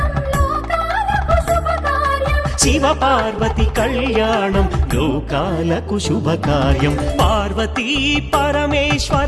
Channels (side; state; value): both; identical; correlation 1.00